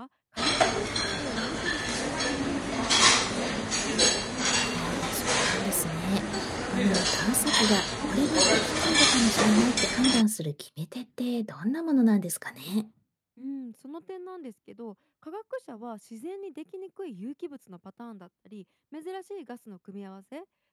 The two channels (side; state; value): both; identical; correlation 1.00